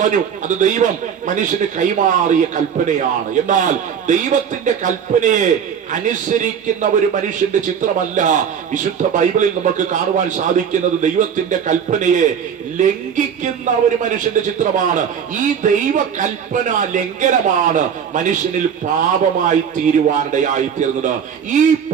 അത് ദൈവം മനുഷ്യന് കൈമാറിയ കൽപ്പനയാണ്. എന്നാൽ ദൈവത്തിന്റെ കൽപ്പനയെ അനുസരിക്കുന്ന ഒരു മനുഷ്യന്റെ ചിത്രമല്ല വിശുദ്ധ ബൈബിളിൽ നമുക്ക് കാണുവാൻ സാധിക്കുന്നത്. ദൈവത്തിന്റെ കൽപ്പനയെ ലംഘിക്കുന്ന ഒരു മനുഷ്യന്റെ ചിത്രമാണ്. ഈ ദൈവ കൽപ്പന ലംഘനമാണ് മനുഷ്യനിൽ പാപമായി തീരുവാനിടയായി തീർന്നത്. ഈ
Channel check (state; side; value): quieter; left; 7.7 dB